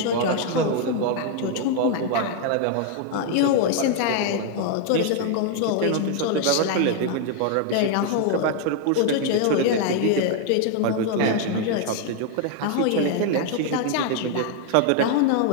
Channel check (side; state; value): both; different; correlation 0.00